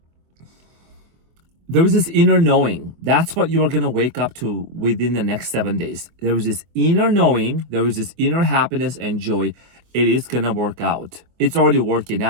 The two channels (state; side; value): late; left; 24 ms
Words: there is this inner knowing. That's what you are going to wake up to within the next 7 days. There is this inner knowing. There is this inner happiness and joy. It is going to work out. It's already working